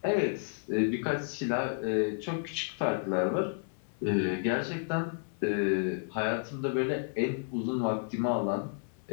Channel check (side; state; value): right; silent; 57 dB below the other